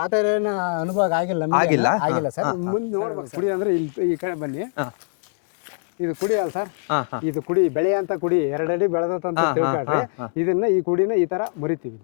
ಆ ತರ ಏನು ಅನುಭವ ಆಗಿಲ್ಲ ಸರ್. ಮುಂದೆ ನೋಡ್ಬೇಕು. ಕುಡಿ ಅಂದ್ರೆ ಇಲ್ಲಿ ಈ ಕಡೆ ಬನ್ನಿ. ಇದು ಕುಡಿ ಅಲ್ಲ ಸರ್, ಇದು ಕುಡಿ ಬೆಳೆ ಅಂತ ಕುಡಿ 2 ಅಡಿ ಬೆಳೆದಂತ ತಿಳ್ಕೊಳ್ರಿ. ಇದನ್ನ ಈ ಕುಡಿನ ಈ ತರ ಮುರಿತೀವಿ.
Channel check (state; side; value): silent; right; digital silence